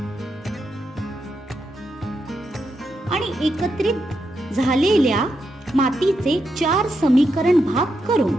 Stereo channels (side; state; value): both; normal; correlation 0.83